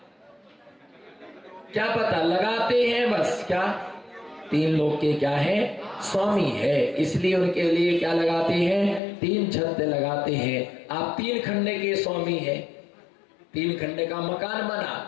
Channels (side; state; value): right; drops out; at 9.0 s